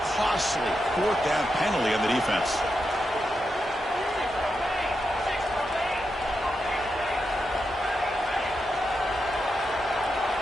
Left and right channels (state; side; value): normal; both; correlation 0.86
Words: costly 4th down penalty on the defense.